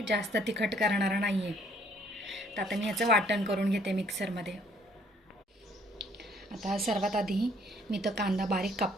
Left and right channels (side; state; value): both; normal; correlation 0.62